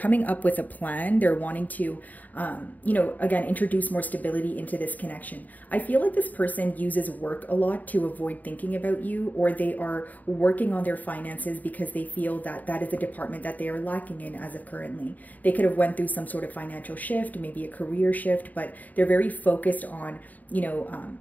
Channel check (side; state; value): right; late; 0.079 ms